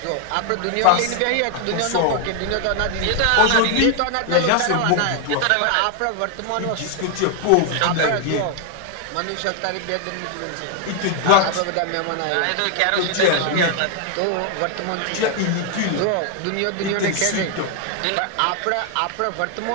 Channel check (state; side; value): different; both; correlation 0.00